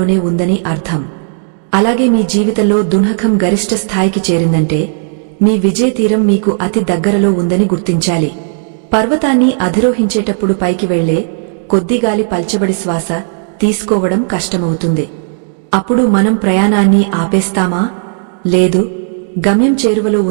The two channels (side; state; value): left; silent; digital silence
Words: ఉందని అర్థం. అలాగే మీ జీవితంలో దుంహకం గరిష్ట స్థాయికి చేరిందంటే మీ విజయతీరం మీకు అతి దగ్గరలో ఉందని గుర్తించాలి. పర్వతాన్ని అధిరోహించేటప్పుడు పైకి వెళ్లే కొద్దిగాలి పల్చబడి శ్వాస తీసుకోవడం కష్టమవుతుంది. అప్పుడు మనం ప్రయాణాన్ని ఆపేస్తామా? లేదు, గమ్యం చేరువలో